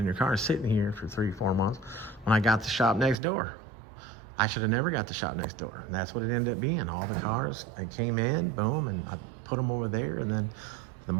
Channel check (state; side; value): drops out; left; at 3.2 s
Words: your car is sitting here for 3-4 months when I got the shop next door. I should have never got the shop next door, and that's what it ended up being. All the cars, I came in, boom, and I put them over there, and then the